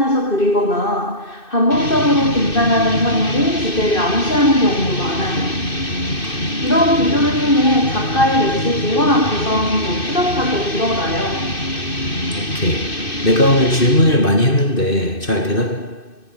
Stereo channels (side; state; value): right; late; 2.6 ms